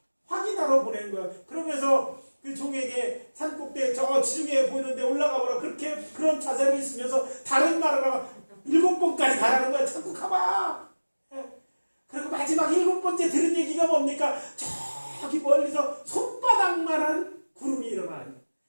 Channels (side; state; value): both; inverted; correlation -1.00